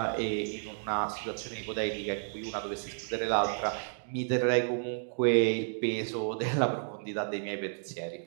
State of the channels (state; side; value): silent; left; digital silence